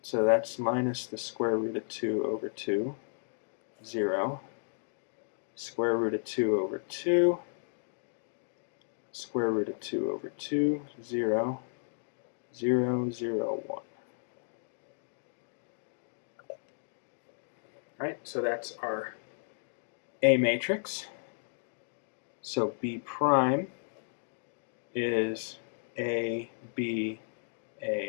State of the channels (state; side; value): silent; right; digital silence